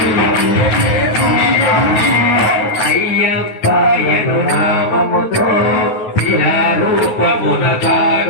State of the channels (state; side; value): late; right; 9.4 ms